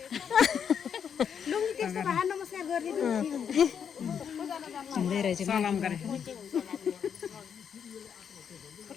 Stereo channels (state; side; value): quieter; right; 7.6 dB